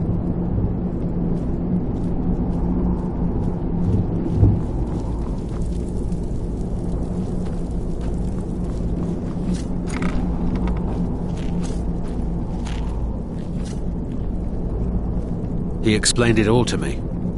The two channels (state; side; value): identical; both; correlation 1.00